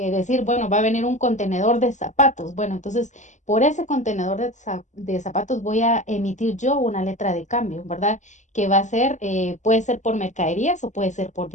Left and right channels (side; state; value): right; late; 0.35 ms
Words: bueno, va a venir un contenedor de zapatos. Bueno, entonces por ese contenedor de zapatos voy a emitir yo una letra de cambio, ¿verdad? Que va a ser, puede ser por mercaderías o puede ser por